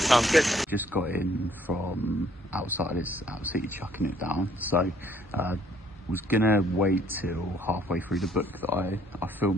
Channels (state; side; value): normal; both; correlation 0.63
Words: good. Just got in from outside, it's absolutely chucking it down, so was gonna wait till halfway through the book that I